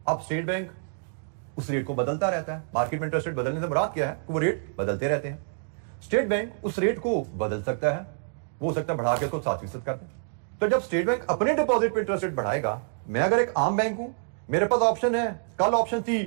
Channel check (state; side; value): silent; left; digital silence